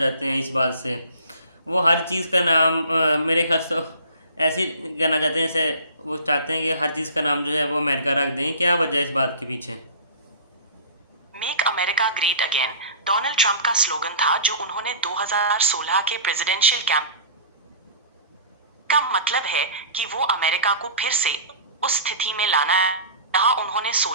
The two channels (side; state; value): both; inverted; correlation -0.40